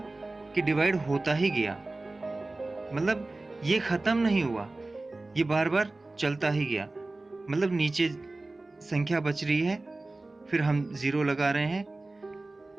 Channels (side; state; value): left; quieter; 3.1 dB